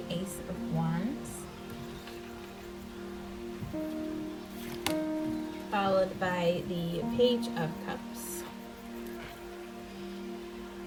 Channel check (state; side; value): identical; both; correlation 1.00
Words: Ace of Wands, followed by the Page of Cups.